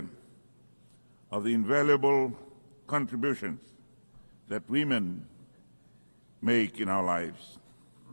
of the invaluable contributions that women make in our lives.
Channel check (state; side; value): inverted; both; correlation -1.00